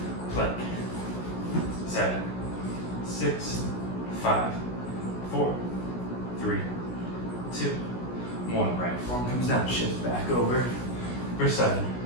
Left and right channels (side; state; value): right; late; 16 ms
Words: plank. 7, 6, 5, 4, 3, 2, 1. Right forearm comes down, shift back over for 7,